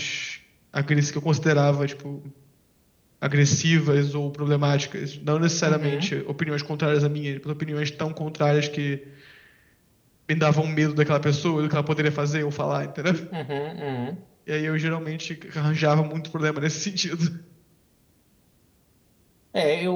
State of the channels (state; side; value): identical; both; correlation 1.00